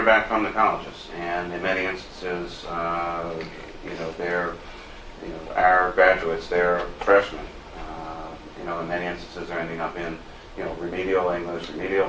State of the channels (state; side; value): identical; both; correlation 1.00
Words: back from the colleges, and in many instances, they're, our graduates, they're freshmen. In many instances, they're ending up in, remedial English, remedial